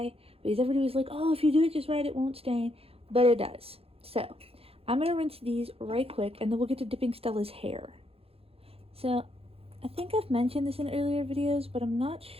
because everybody was like, oh, if you do it just right, it won't stain, but it does. So I'm going to rinse these right quick and then we'll get to dipping Stella's hair. So I think I've mentioned this in earlier videos, but I'm not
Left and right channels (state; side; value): late; left; 0.28 ms